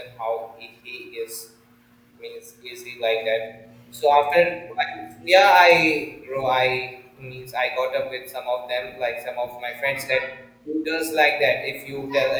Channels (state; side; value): identical; both; correlation 1.00